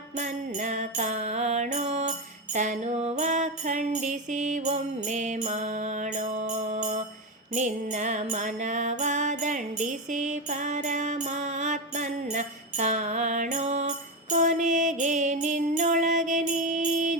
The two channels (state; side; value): normal; both; correlation 0.13